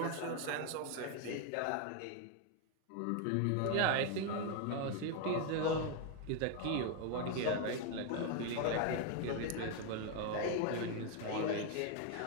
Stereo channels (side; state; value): both; different; correlation 0.01